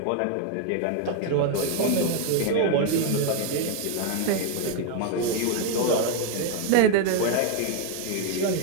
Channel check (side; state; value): both; different; correlation 0.01